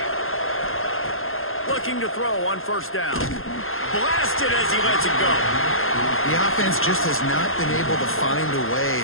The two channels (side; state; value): right; late; 0.60 ms